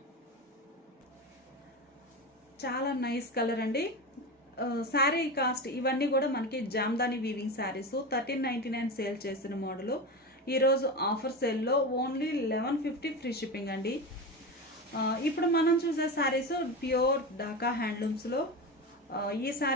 చాలా నైస్ కలర్ అండి. శారీ కాస్ట్ ఇవన్నీ కూడా మనకి జామ్దాని వీవింగ్ శారీస్ 1399 సేల్ చేసిన మోడల్. ఈరోజు ఆఫర్ సేల్లో ఓన్లీ 1150 ఫ్రీ షిప్పింగ్ అండి. ఇప్పుడు మనం చూసే శారీస్ ప్యూర్ డాకా హ్యాండ్లూమ్స్లో. ఈ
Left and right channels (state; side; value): normal; both; correlation 0.23